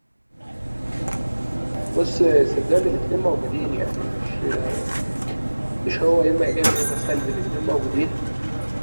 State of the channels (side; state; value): both; inverted; correlation -1.00